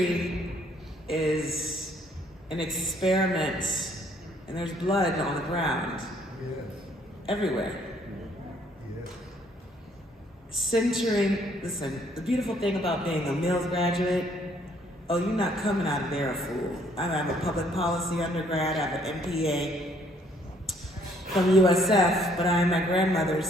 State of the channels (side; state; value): both; normal; correlation 0.65